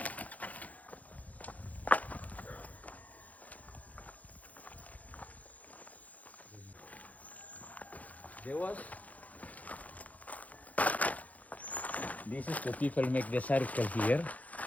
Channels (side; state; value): right; late; 0.073 ms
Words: This is the people make the circle here,